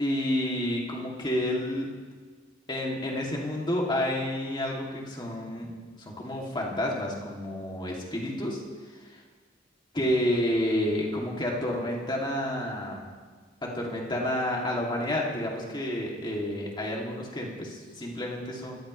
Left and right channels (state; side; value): normal; both; correlation 0.57